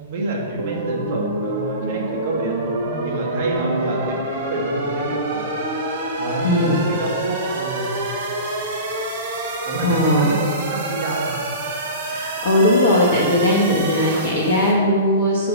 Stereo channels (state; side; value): inverted; both; correlation -0.34